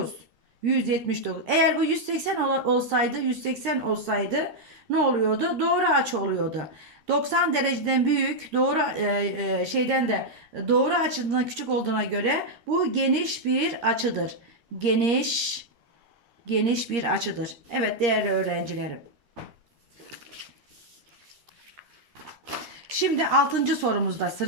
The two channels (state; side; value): late; left; 13 ms